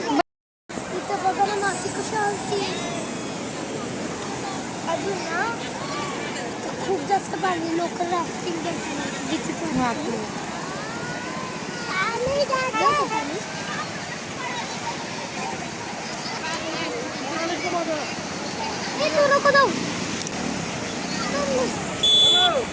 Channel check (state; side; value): identical; both; correlation 1.00